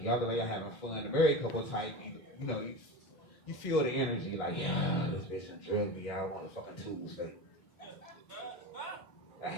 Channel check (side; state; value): both; normal; correlation 0.28